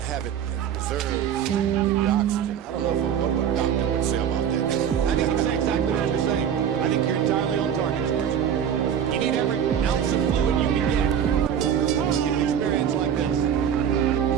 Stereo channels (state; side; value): quieter; left; 8.7 dB